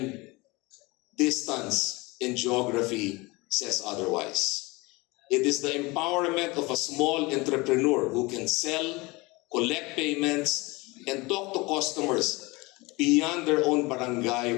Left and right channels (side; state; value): right; quieter; 23.9 dB